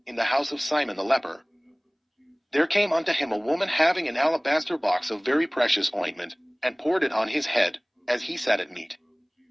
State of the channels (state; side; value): identical; both; correlation 1.00